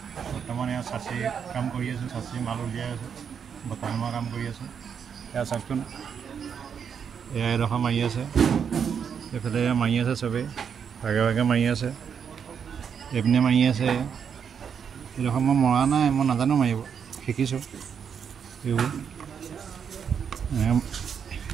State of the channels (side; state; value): left; quieter; 7.3 dB